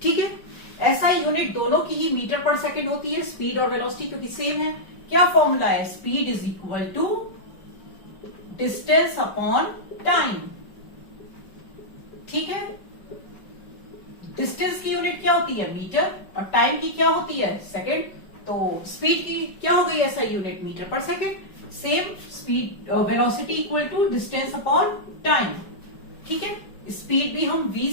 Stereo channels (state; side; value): late; right; 5.2 ms